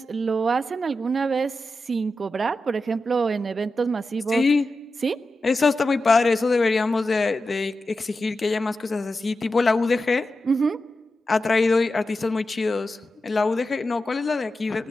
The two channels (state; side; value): normal; both; correlation 0.91